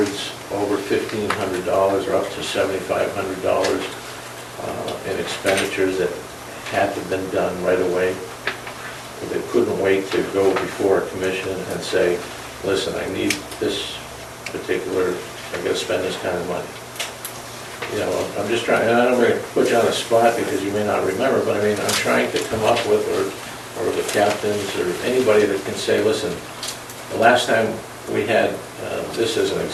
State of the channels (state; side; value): identical; both; correlation 1.00